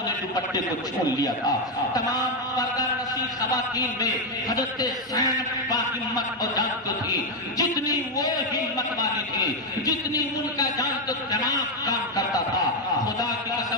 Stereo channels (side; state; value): both; normal; correlation 0.04